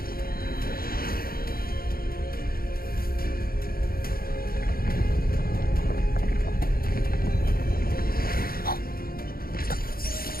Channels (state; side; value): late; right; 0.43 ms